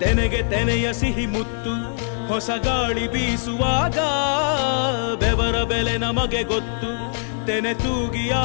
ತೆನೆಗೆ ತೆನೆಯ ಸಿಹಿ ಮುತ್ತು ಹೊಸ ಗಾಳಿ ಬೀಸುವಾಗ ಬೆವರ ಬೆಲೆ ನಮಗೆ ಗೊತ್ತು ತೆನೆ ತೂಗಿ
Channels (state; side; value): silent; right; digital silence